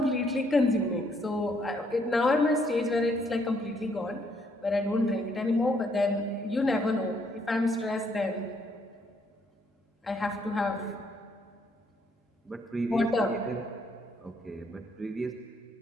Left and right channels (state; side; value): normal; both; correlation 0.70